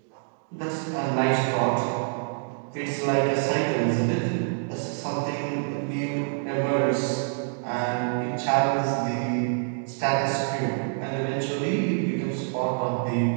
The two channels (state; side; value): silent; left; 61 dB below the other